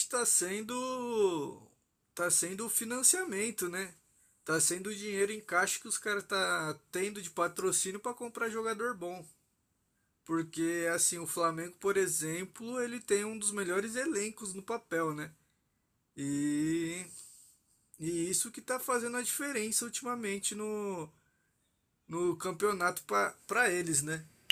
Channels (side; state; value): both; identical; correlation 1.00